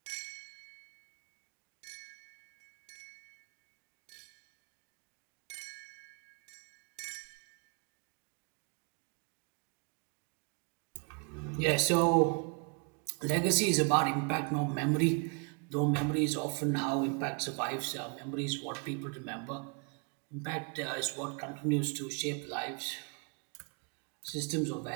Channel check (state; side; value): quieter; left; 36.3 dB